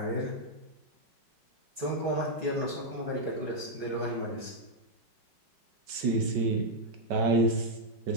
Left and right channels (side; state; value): left; late; 5.3 ms